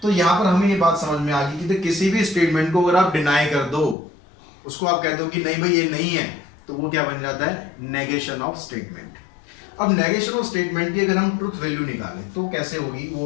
तो यहाँ पर हमें ये बात समझ में आ गई कि किसी भी स्टेटमेंट को अगर आप डिनाई कर दो, उसको आप कह दो कि नहीं भाई ये नहीं है, तो वो क्या बन जाता है? Negation of statement. अब नेगेशन ऑफ स्टेटमेंट की अगर हम ट्रुथ वैल्यू निकालें तो कैसे होगी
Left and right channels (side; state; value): right; drops out; at 4.0 s